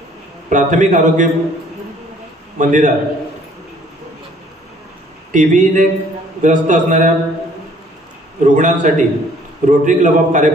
प्राथमिक आरोग्य मंदिरात टीबीने ग्रस्त असणाऱ्या रुग्णांसाठी रोटरी क्लब ऑफ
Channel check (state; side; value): normal; both; correlation 0.58